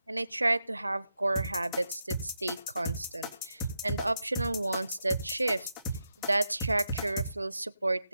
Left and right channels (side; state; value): both; inverted; correlation -0.86